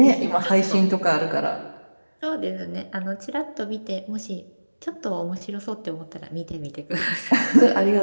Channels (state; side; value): inverted; both; correlation -1.00